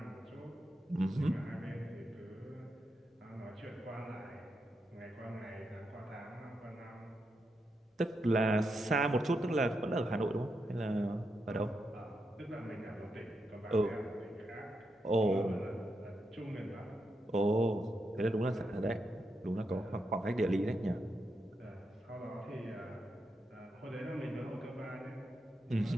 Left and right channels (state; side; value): normal; both; correlation 0.84